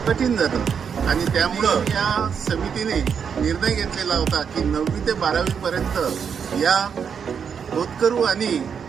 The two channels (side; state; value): left; quieter; 7.0 dB